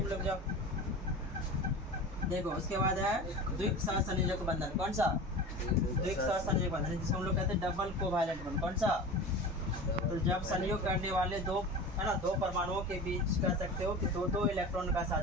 लोग जाओ, देखो उसके बाद है द्विक सहसंयोजक बंधन। कौन सा, द्विक सहसंयोजक बंधन, जिसको हम लोग कहते हैं डबल कोवैलेंट बॉन्ड। कौन सा, तो जब संयोग करने वाले दो, है ना, 2 परमाणुओं के बीच कह सकते हो कि 2-2 इलेक्ट्रॉन का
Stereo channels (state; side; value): normal; both; correlation 0.33